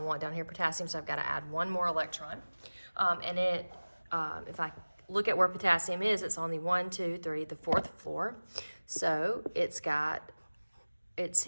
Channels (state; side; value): inverted; both; correlation -1.00